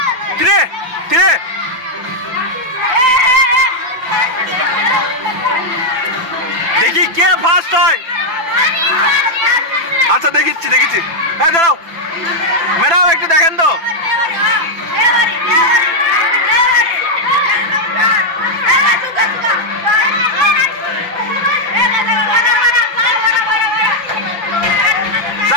3 3। দেখি কে ফার্স্ট হয়। আচ্ছা দেখিচ্ছি দেখিচ্ছি। হ্যাঁ দাঁড়াও ম্যাডাম, একটু দেখেন তো।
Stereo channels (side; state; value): left; late; 5.8 ms